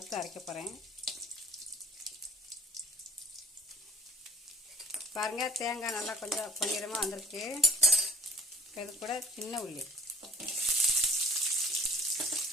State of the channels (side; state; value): both; normal; correlation 0.51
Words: அரைக்க போகிறேன். பாருங்கள், தேங்காய் நல்லா கொஞ்சம் பொன்னிறமாக வந்திருக்கு. இது கூட சின்ன உள்ளி,